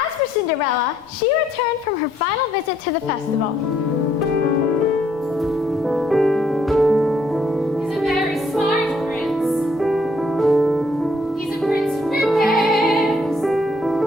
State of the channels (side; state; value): both; normal; correlation 0.69